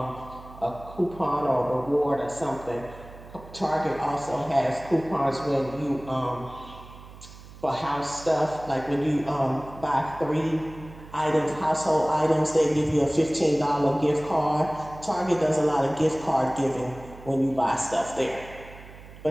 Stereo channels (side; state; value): right; noise; hum, 18 dB below the sound